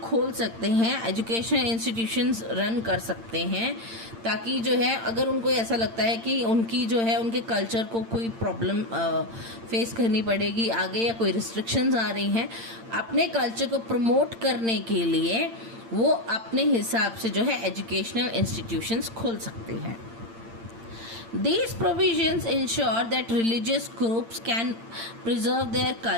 सकते हैं, एजुकेशन इंस्टीट्यूशंस रन कर सकते हैं, ताकि जो है अगर उनको ऐसा लगता है कि उनकी जो है उनके कल्चर को कोई प्रॉब्लम फेस करनी पड़ेगी आगे या कोई रिस्ट्रिक्शंस आ रही हैं, अपने कल्चर को प्रमोट करने के लिए वो अपने हिसाब से जो है एजुकेशनल इंस्टीट्यूशंस खोल सकते हैं। These provisions ensure that religious groups can preserve their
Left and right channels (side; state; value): left; late; 8.8 ms